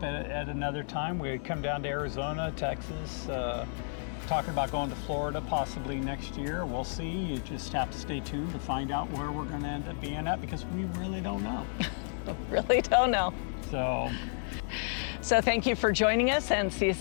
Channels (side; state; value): right; silent; digital silence